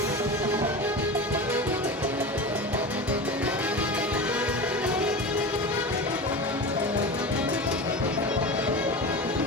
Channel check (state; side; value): normal; both; correlation 0.28